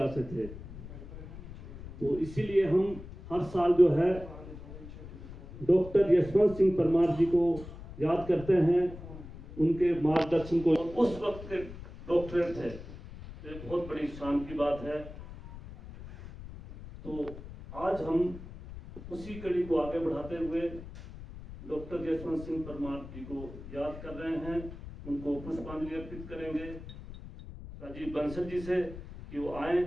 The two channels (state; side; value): noise; left; rumble, 13 dB below the sound